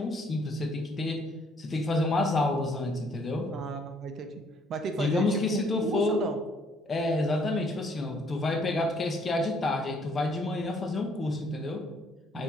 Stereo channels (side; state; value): both; normal; correlation 0.65